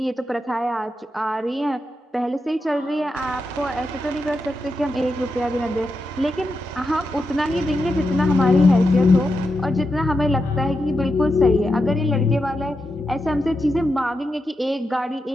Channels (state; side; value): normal; both; correlation 0.87